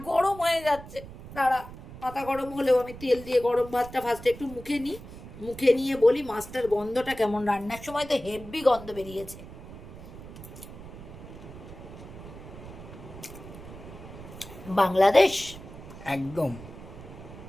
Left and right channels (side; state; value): right; noise; rumble, 14 dB below the sound